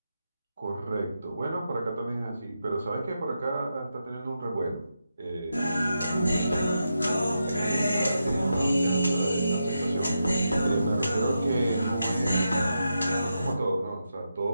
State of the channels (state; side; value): inverted; both; correlation -0.86